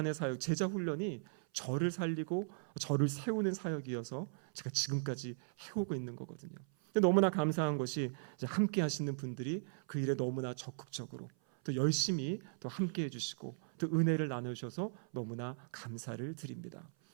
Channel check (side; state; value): left; silent; 52 dB below the other